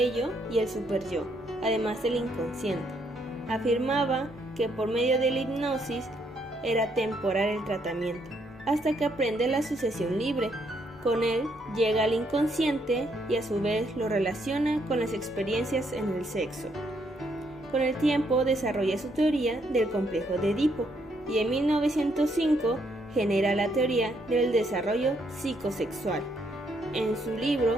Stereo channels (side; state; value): both; normal; correlation 0.73